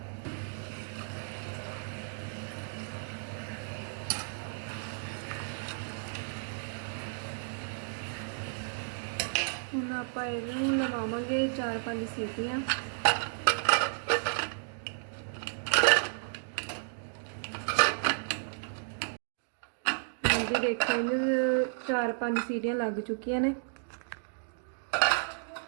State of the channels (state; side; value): silent; left; digital silence